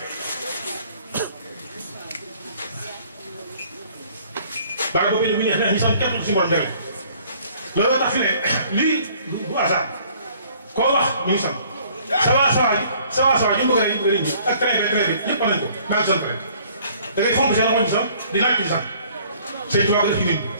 bari boo fekkee lu mu neex nag ñu sant képp suñu borom jàngi looloo tax fi ne lii bu hasard koo wax ñu ngi sant sawa ñu bëgg a ñi ak traité ñëpp nañ ko maa ngi sant rek da ngay fonk seen xoñ sax di laaj ci sax sëñ Tuubaa def ci nit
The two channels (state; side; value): inverted; both; correlation -0.57